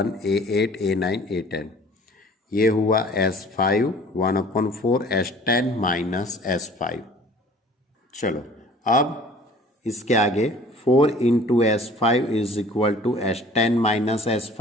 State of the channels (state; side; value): normal; both; correlation 0.49